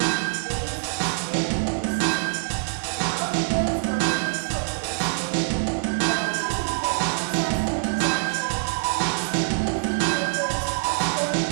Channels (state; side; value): silent; left; digital silence